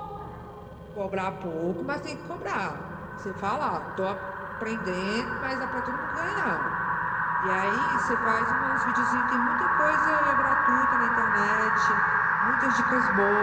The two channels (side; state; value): both; identical; correlation 1.00